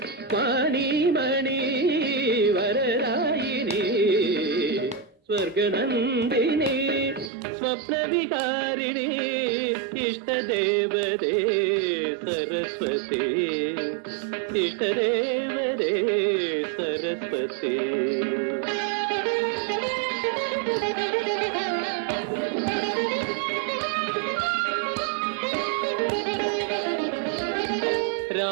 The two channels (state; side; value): drops out; left; at 7.3 s